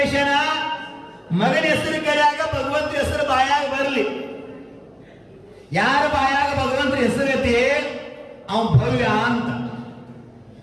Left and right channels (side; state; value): both; identical; correlation 1.00